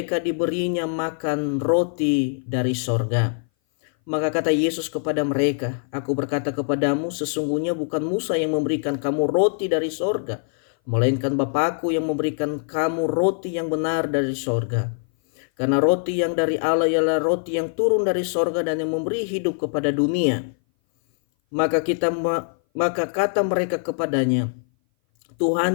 diberinya makan roti dari sorga.' Maka kata Yesus kepada mereka, 'Aku berkata kepadamu, sesungguhnya bukan Musa yang memberikan kamu roti dari sorga, melainkan Bapa-Ku yang memberikan kamu roti yang benar dari sorga. Karena roti yang dari Allah ialah roti yang turun dari sorga dan yang memberi hidup kepada dunia.' Maka kata mereka kepadanya,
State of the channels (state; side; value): silent; right; 58 dB below the other